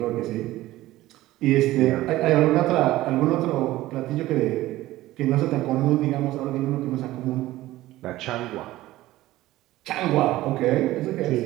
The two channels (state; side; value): quieter; left; 16.4 dB